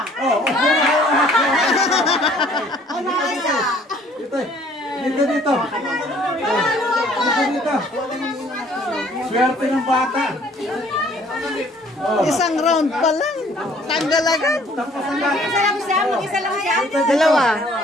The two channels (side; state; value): both; normal; correlation 0.58